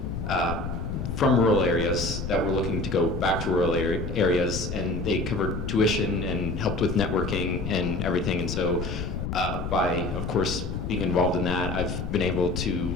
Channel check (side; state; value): left; noise; rumble, 4 dB below the sound